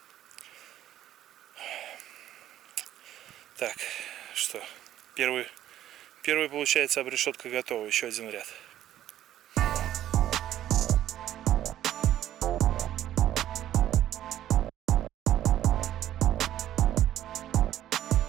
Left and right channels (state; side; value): quieter; left; 12.2 dB